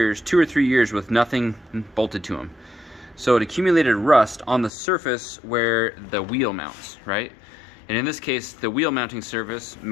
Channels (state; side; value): drops out; right; at 4.7 s